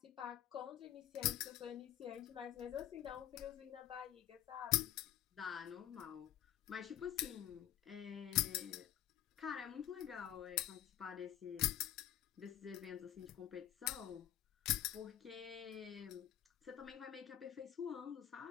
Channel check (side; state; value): right; quieter; 11.7 dB